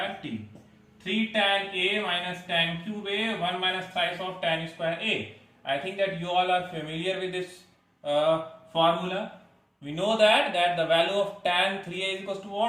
t. 3 tan a minus tan cube a, 1 minus thrice of tan square a. I think that you all are familiar with this formula. We know that the value of tan 3a is equals to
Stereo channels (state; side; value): identical; both; correlation 1.00